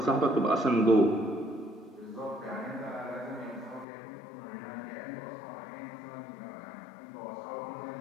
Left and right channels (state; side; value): drops out; right; at 3.9 s